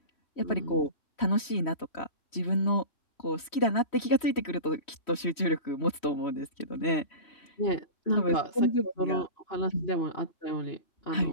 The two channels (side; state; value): right; late; 3.1 ms